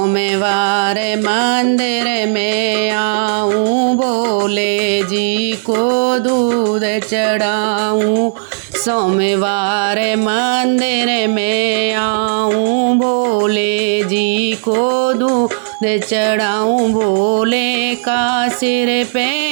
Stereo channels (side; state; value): left; silent; digital silence